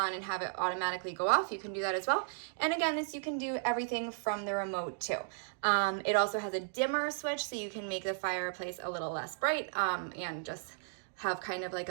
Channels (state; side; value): silent; left; digital silence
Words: and have it automatically go off. You can do that as well. And again, this you can do everything from the remote too. It also has a dimmer switch, so you can make the fireplace a little less bright and just have kind of like